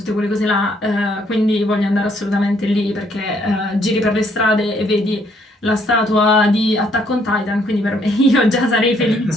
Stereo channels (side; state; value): both; normal; correlation 0.68